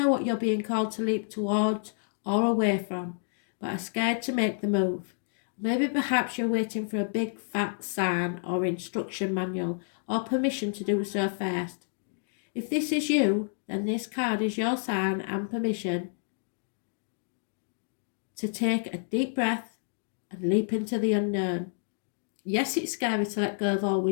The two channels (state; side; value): silent; right; digital silence